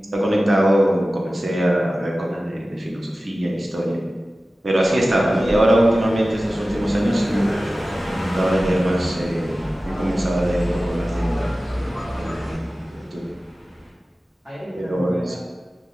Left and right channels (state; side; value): normal; both; correlation 0.96